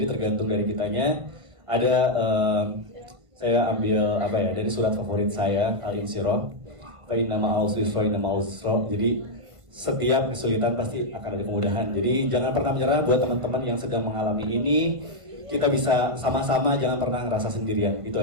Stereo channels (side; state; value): left; late; 1.5 ms